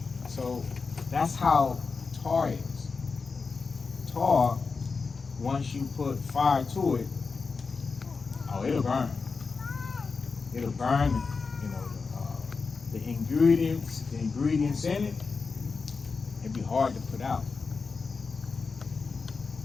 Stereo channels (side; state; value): right; quieter; 4.7 dB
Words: So that's how tar is. Tar, once you put fire to it, oh, it'll burn. It'll burn, you know, the ingredients in it. It'd be hard to put out.